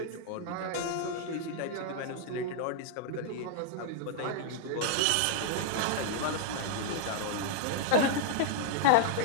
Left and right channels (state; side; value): different; both; correlation 0.00